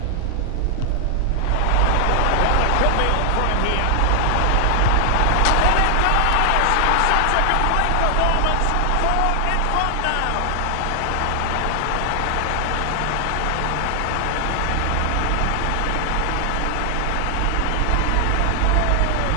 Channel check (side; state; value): both; different; correlation 0.00